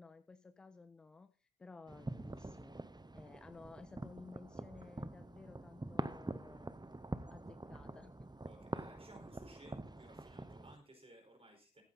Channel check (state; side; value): normal; both; correlation 0.85